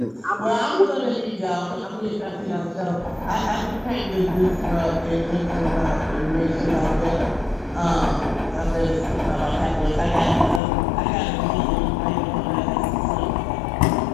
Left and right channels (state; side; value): drops out; right; at 10.6 s